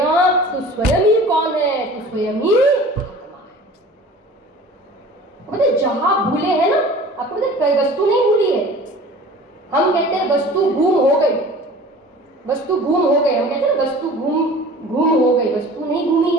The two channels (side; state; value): both; normal; correlation 0.43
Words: तू स्वयं ही कौन है, तू स्वयं ही मतलब जहां भूले हैं ना, आपको मतलब कोई वस्तु नहीं भूली है। हम कहते हैं वस्तु गुम हो गई, वस्तु गुम हो गई, हम कहते हैं वस्तु गुम हो गई, वस्तु नहीं घूमी